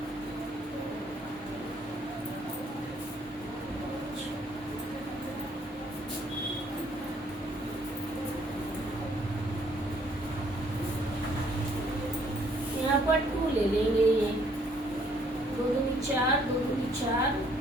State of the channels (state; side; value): normal; both; correlation 0.65